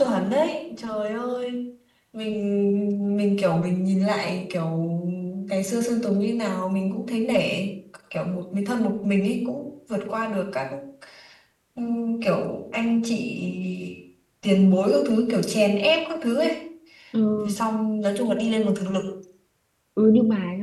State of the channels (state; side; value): identical; both; correlation 1.00